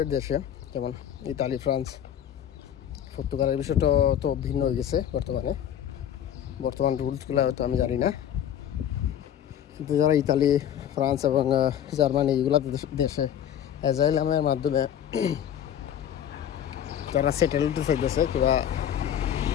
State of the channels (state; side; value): quieter; right; 9.8 dB